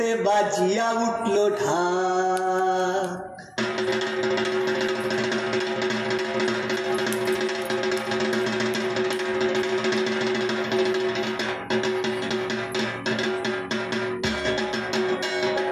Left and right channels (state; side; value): identical; both; correlation 1.00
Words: বাজিয়া উঠলো ঢাক।